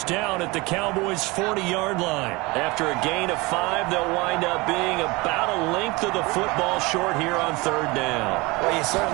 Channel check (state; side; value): quieter; left; 24.0 dB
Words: down at the Cowboys' 40-yard line. After a gain of 5, they'll wind up being about a length of the football short here on third down. Well, you